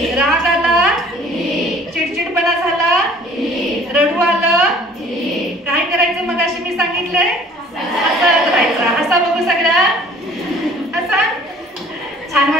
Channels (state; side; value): normal; both; correlation 0.52